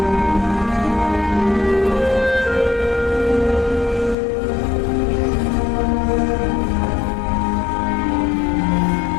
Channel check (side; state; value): right; drops out; at 4.2 s